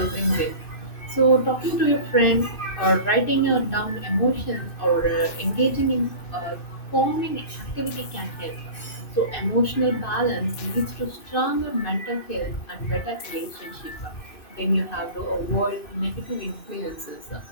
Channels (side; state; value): right; late; 2.6 ms